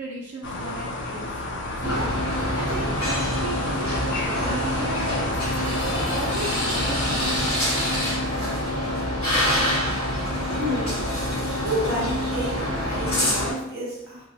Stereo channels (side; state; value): both; normal; correlation 0.20